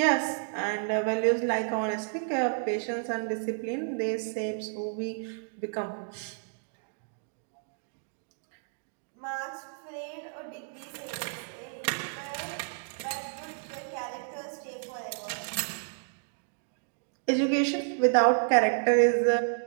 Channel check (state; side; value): silent; left; digital silence